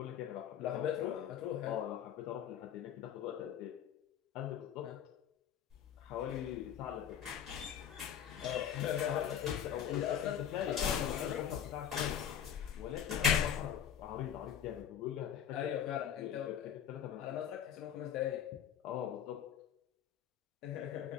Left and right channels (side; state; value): right; quieter; 9.1 dB